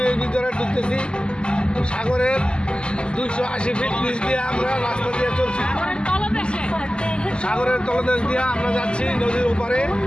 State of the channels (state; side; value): late; right; 0.049 ms